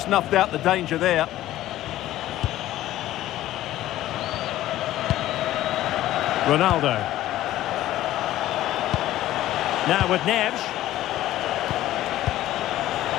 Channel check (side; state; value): right; quieter; 14.3 dB